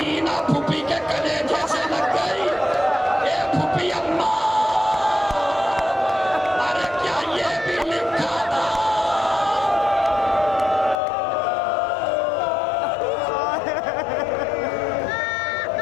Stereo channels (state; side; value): drops out; right; at 11.0 s